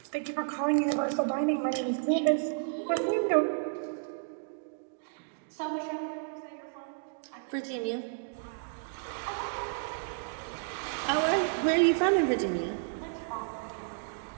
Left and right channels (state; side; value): silent; left; digital silence